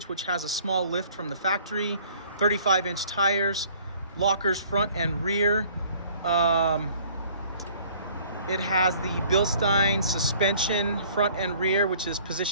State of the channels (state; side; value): inverted; both; correlation -0.55